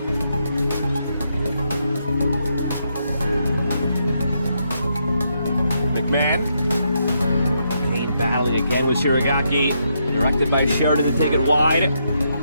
McMahon. Kane battling again with Shiragaki. Directed by Sheridan to take it wide.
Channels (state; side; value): inverted; both; correlation -0.79